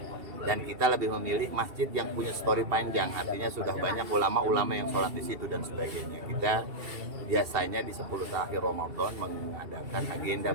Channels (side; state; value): left; late; 2.7 ms